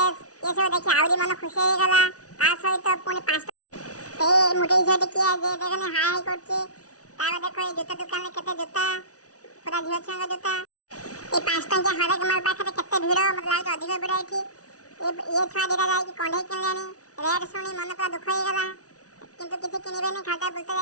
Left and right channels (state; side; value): late; right; 0.67 ms